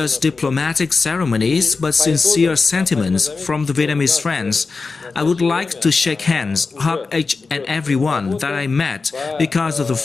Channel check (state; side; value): quieter; right; 4.3 dB